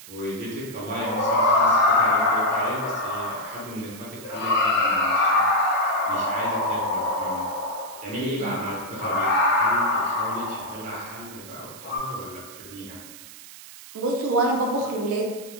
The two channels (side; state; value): right; noise; hiss, 17 dB below the sound